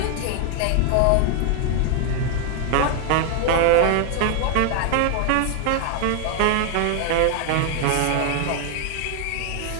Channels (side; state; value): both; different; correlation 0.00